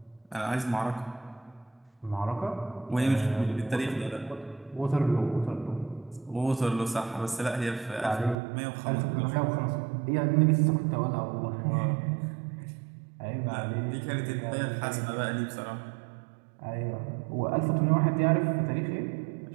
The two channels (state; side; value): drops out; left; at 8.3 s